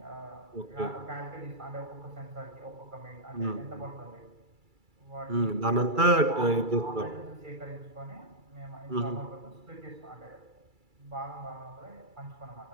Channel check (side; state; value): left; late; 2.3 ms